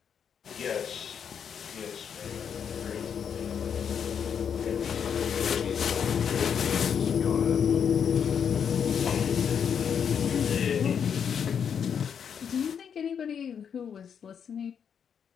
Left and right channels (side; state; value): right; quieter; 7.6 dB